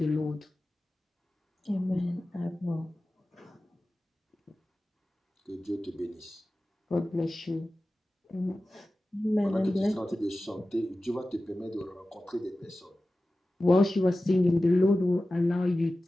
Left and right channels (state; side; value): normal; both; correlation 0.95